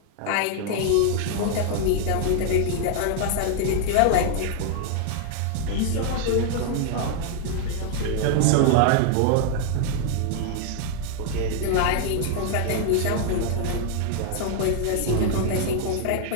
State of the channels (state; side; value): different; both; correlation 0.00